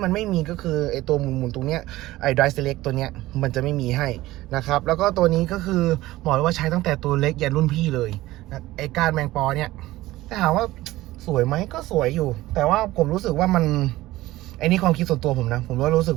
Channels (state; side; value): quieter; left; 17.2 dB